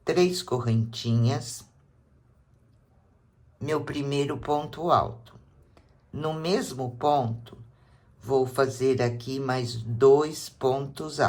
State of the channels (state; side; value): identical; both; correlation 1.00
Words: 3 correntinhas, meu primeiro ponto alto. No mesmo ponto, vou fazer aqui mais 2 pontos